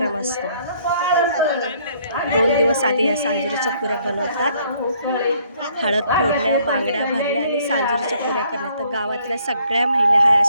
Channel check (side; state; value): both; inverted; correlation -0.64